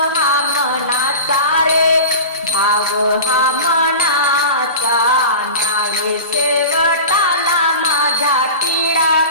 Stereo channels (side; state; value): both; inverted; correlation -0.32